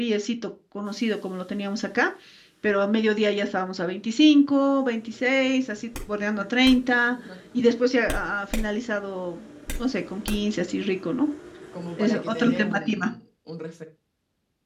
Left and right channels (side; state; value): both; identical; correlation 1.00